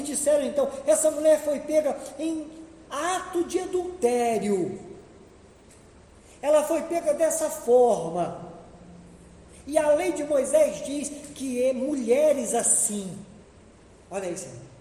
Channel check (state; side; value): identical; both; correlation 1.00